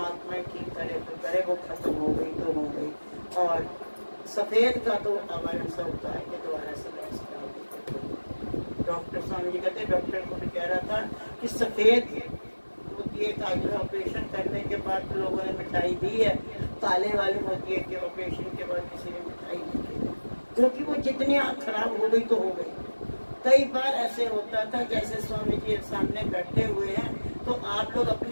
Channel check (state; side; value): inverted; both; correlation -1.00